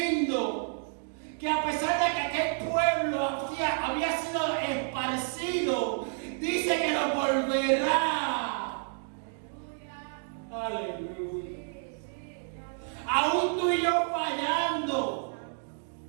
que a pesar de que aquel pueblo había sido esparcido, dice que lo volverá. Aleluya. Aún tú y yo fallando,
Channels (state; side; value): silent; left; 58 dB below the other